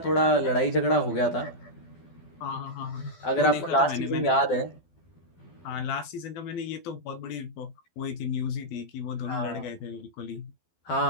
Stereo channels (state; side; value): late; right; 12 ms